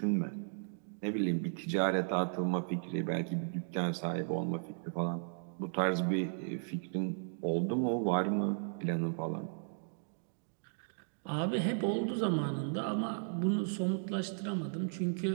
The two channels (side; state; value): left; silent; digital silence